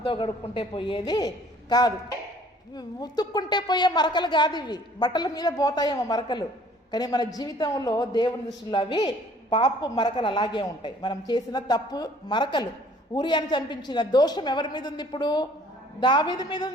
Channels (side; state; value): both; normal; correlation 0.56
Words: గడుక్కుంటే పోయేది కాదు, ఉతుక్కుంటే పోయే మరకలు కాదు ఇవి. బట్టల మీద పోతాయేమో మరకలు, కానీ మన జీవితంలో దేవుని దృష్టిలో అవి పాపు మరకలు అలాగే ఉంటాయి. మనం చేసిన తప్పు మరకలు. ఊరియాని చంపించిన దోషం ఎవరి మీద ఉంది? ఇప్పుడు దావీదు మీద